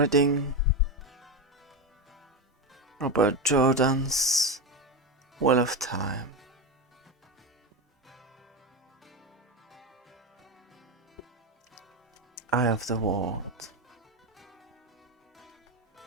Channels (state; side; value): normal; both; correlation 0.14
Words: Robert Jordan's Wheel of Time. Eye of the World.